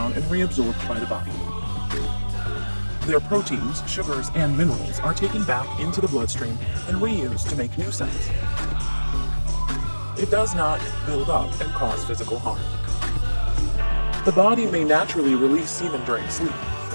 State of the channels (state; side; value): inverted; both; correlation -1.00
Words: and reabsorbed by the body. Their proteins, sugars, and minerals are taken back into the bloodstream and reused to make new cells. It does not build up and cause physical harm. The body may naturally release semen during sleep.